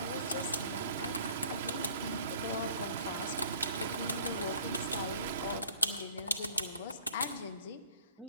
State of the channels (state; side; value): inverted; both; correlation -0.51